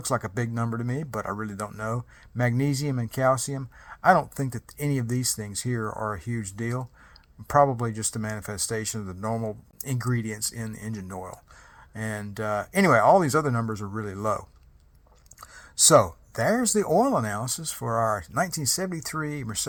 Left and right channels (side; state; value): both; identical; correlation 1.00